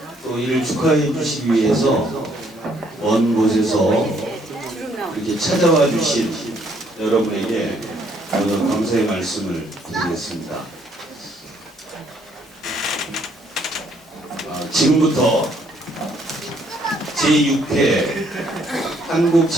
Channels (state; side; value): normal; both; correlation 0.67